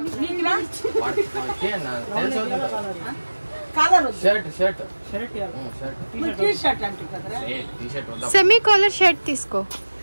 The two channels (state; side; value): inverted; both; correlation -1.00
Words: shirt semi caller shirt తీసుకో.